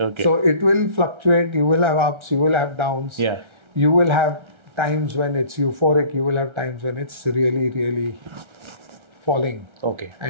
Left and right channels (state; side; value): late; left; 1.3 ms